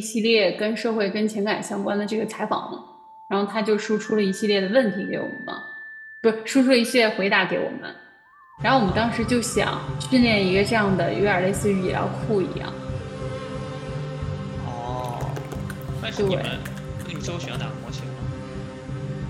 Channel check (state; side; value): identical; both; correlation 1.00